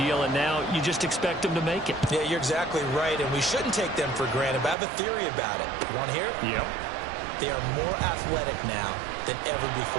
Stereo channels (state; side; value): drops out; left; at 4.8 s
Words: and now you just expect them to make it. Yeah, you're exactly right, and we shouldn't take them for granted, but I have a theory about it. You want to hear it? Yep. They are more athletic now than ever